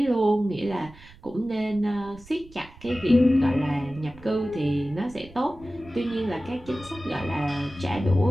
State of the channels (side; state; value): right; noise; rumble, 22 dB below the sound